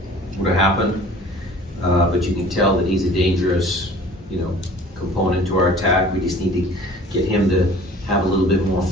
would have happened, but you can tell that he's a dangerous, component to our attack. We just need to get him to have a little bit more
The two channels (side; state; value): both; normal; correlation 0.47